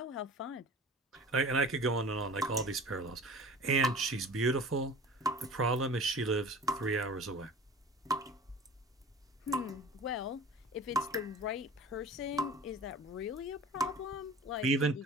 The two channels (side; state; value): both; normal; correlation 0.40